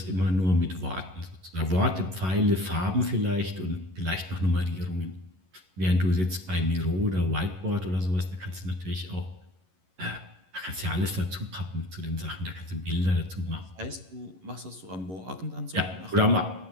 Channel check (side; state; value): left; late; 11 ms